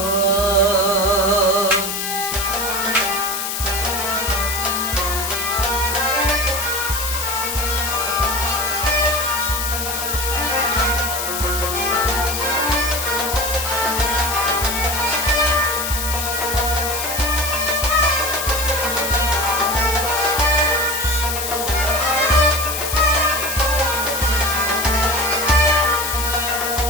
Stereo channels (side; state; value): left; noise; hiss, 3 dB below the sound